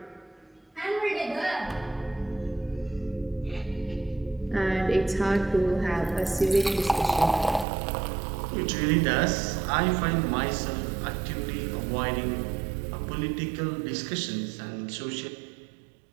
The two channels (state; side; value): drops out; left; at 7.7 s